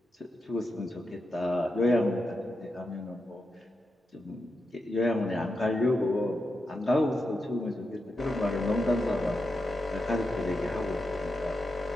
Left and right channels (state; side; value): normal; both; correlation 0.87